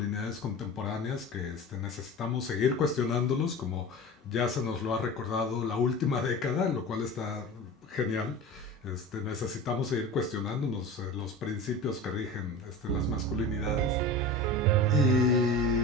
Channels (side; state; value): both; normal; correlation 0.33